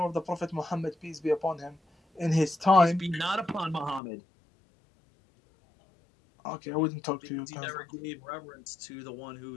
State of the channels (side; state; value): right; drops out; at 4.0 s